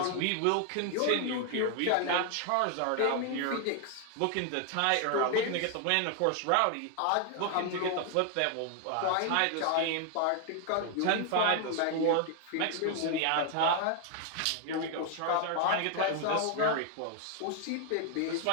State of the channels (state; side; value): different; both; correlation 0.00